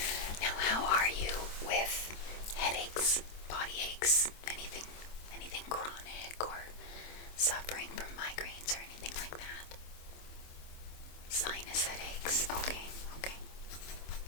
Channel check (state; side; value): late; right; 26 ms